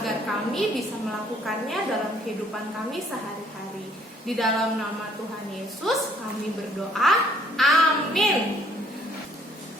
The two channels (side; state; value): both; normal; correlation 0.61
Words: kami bisa melakukannya dalam kehidupan kami sehari-hari. Di dalam nama Tuhan Yesus kami berdoa, amin.